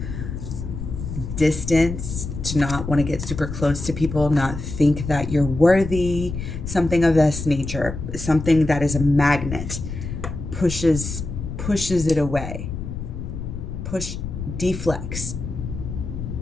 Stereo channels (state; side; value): noise; left; rumble, 7 dB below the sound